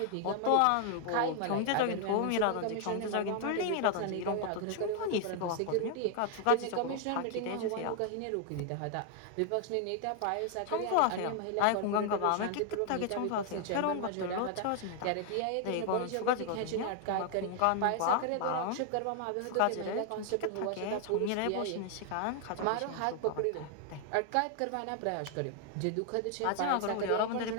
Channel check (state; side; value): different; both; correlation 0.00